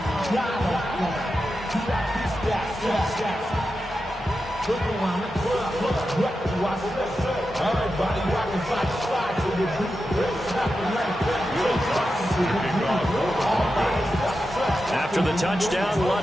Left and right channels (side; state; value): both; normal; correlation 0.90